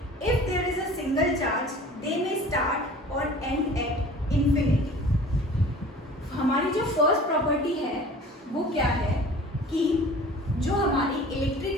If there is a single charge they may start और एंड एट इंफिनिटी। हमारी जो फर्स्ट प्रॉपर्टी है वो क्या है कि जो हमारी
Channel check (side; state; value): both; normal; correlation 0.44